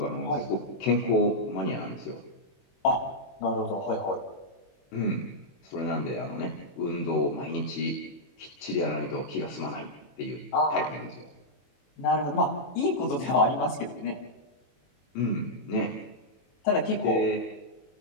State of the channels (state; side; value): late; right; 21 ms